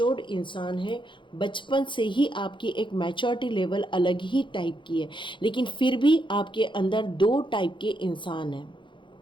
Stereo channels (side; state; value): right; late; 0.23 ms